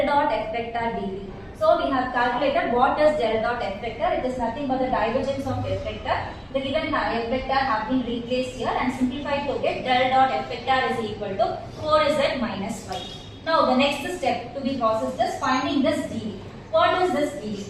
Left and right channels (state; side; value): identical; both; correlation 1.00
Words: dot f vector dv. So we have calculated what is del dot f vector. It is nothing but the divergence of f vector. The given f vector have been replaced here and simplified to get del dot f vector is equal to 4z minus 5. Now the next step to be processed is finding this dv. What is this dv?